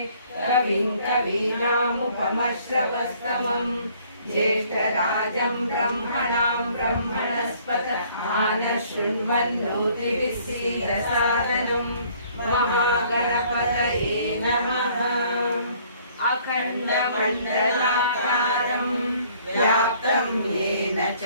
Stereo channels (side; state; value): both; inverted; correlation -0.59